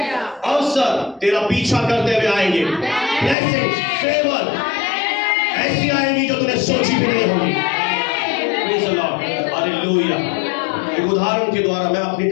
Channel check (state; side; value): drops out; right; at 3.4 s